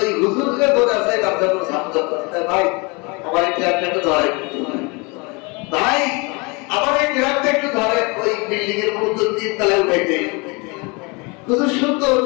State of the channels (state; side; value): quieter; right; 28.9 dB